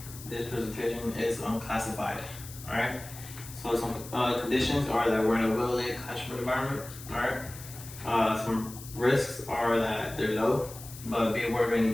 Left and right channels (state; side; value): noise; left; hiss, 15 dB below the sound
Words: This presentation is unclassified, alright? So some conditions are that we're in a well-lit classroom environment, alright? Some risks are that they're low, but be aware of